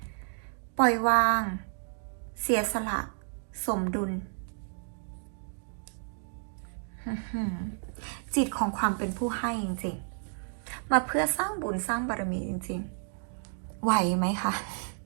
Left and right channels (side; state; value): left; silent; 57 dB below the other